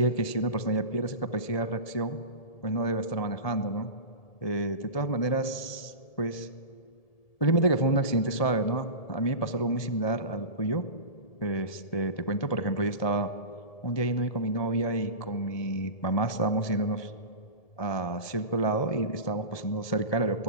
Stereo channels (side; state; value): right; late; 1.7 ms